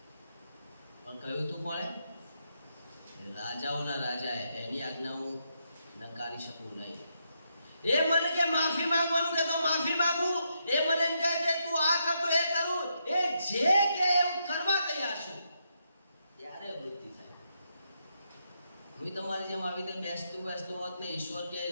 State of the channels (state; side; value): inverted; both; correlation -0.80